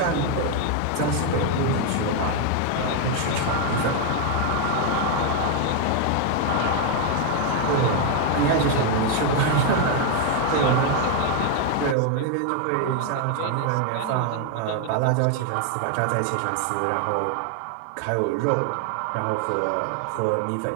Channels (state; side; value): different; both; correlation 0.01